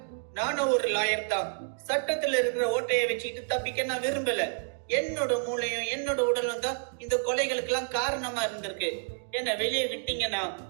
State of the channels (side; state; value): left; silent; digital silence